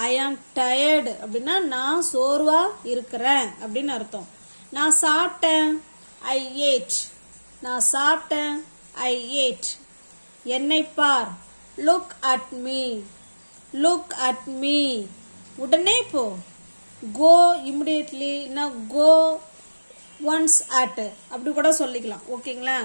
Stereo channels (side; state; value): both; inverted; correlation -1.00